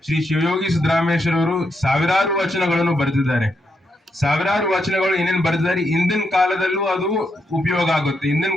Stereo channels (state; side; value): normal; both; correlation 0.81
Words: ಶ್ರೀ ಶಿವಯೋಗಿ ಸಿದ್ದರಾಮೇಶ್ವರ ಅವರು ಸಾವಿರಾರು ವಚನಗಳನ್ನು ಬರೆದಿದ್ದಾರೆ. ಸಾವಿರಾರು ವಚನಗಳು ಏನೇನ್ ಬರೆದಿದ್ದಾರೆ ಇಂದಿನ ಕಾಲದಲ್ಲೂ ಅದು ಉಪಯೋಗ ಆಗುತ್ತೆ, ಇಂದಿನ